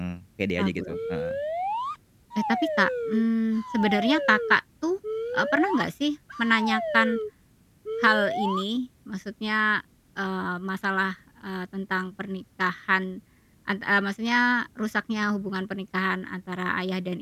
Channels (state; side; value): identical; both; correlation 1.00